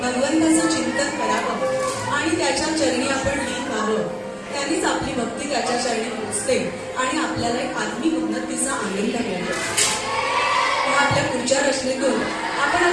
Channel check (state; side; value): identical; both; correlation 1.00